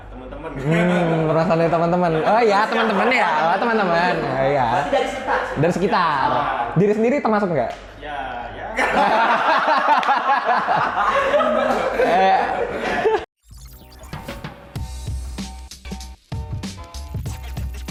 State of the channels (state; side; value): identical; both; correlation 1.00